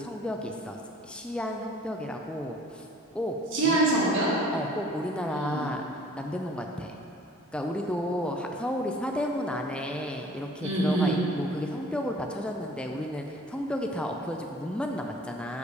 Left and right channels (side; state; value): both; normal; correlation 0.50